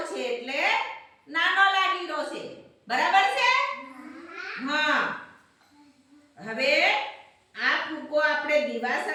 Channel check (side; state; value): both; identical; correlation 1.00